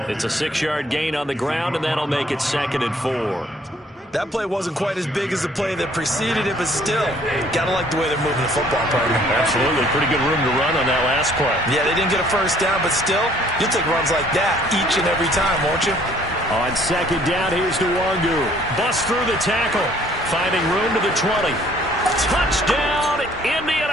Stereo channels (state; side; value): normal; both; correlation 0.59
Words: It's a 6-yard gain on the ground, and that'll make it 2nd and 4. That play wasn't quite as big as the play that preceded it, but still, gotta like the way they're moving the football, partner. Absolutely. Pretty good room to run on that last play. Yeah, they didn't get a first down, but still, you'll take runs like that each and every time, won't you? On 2nd down, here's Nwangu. Bust through the tackle, finding room to the 20. Touchdown,